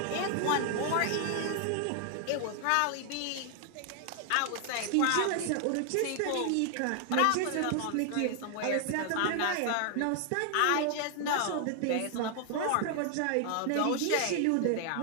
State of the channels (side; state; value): both; different; correlation 0.00